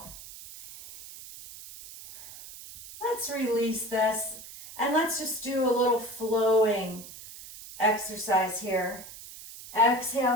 Let's release this and let's just do a little flowing exercise here.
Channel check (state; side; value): noise; right; hiss, 15 dB below the sound